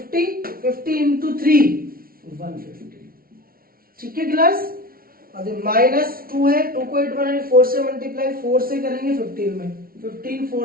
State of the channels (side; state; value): left; late; 0.43 ms